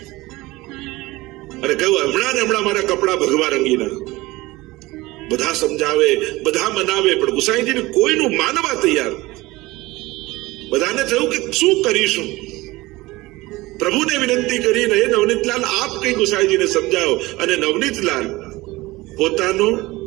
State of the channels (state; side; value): quieter; left; 20.2 dB